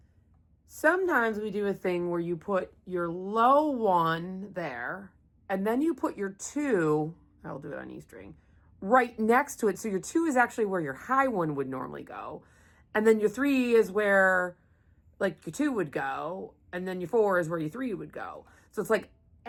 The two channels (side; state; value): both; identical; correlation 1.00